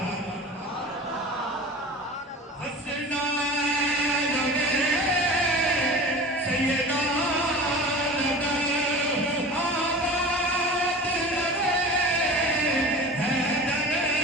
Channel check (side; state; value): both; normal; correlation 0.36